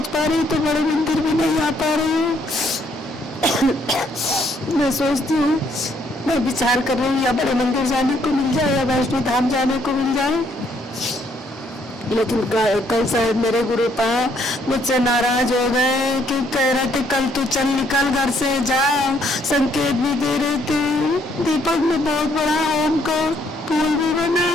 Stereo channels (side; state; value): both; normal; correlation 0.69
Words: पा रही, तो बड़े मंदिर भी नहीं आ पा रही हूँ। मैं सोचती हूँ, मैं विचार कर रही हूँ या बड़े मंदिर जाने को मिल जाए या वैष्णो धाम जाने को मिल जाए। लेकिन कल शायद मेरे गुरुपा मुझसे नाराज हो गए कि कह रहे थे कल तू चल निकल घर से जा, संकेत भी दे रहे थे। दीपक में बहुत बड़ा ओम का फूल भी बना,